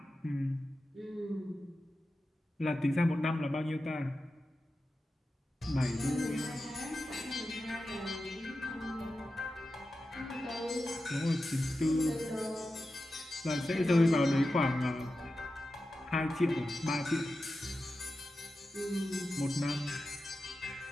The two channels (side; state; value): both; normal; correlation 0.92